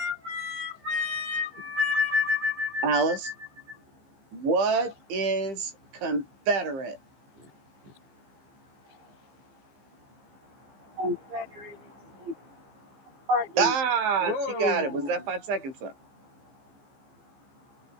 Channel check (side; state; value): left; late; 15 ms